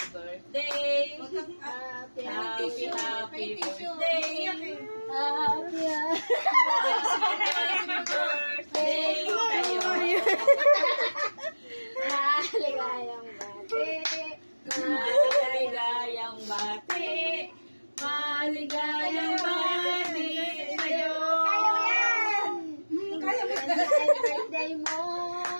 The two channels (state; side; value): inverted; both; correlation -1.00